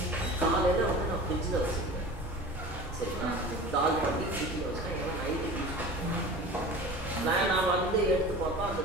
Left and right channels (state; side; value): normal; both; correlation 0.36